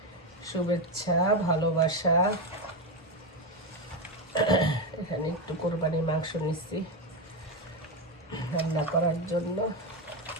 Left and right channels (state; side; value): normal; both; correlation 0.11